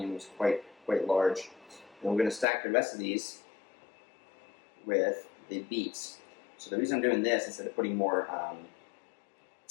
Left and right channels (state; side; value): drops out; right; at 2.5 s